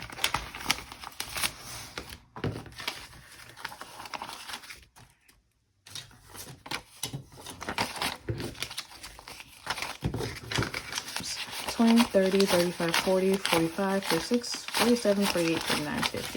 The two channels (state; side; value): identical; both; correlation 1.00